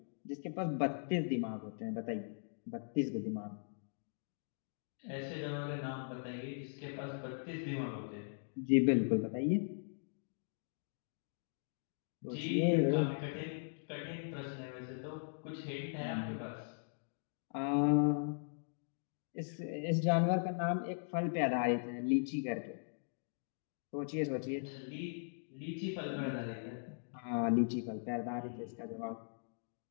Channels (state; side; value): silent; right; digital silence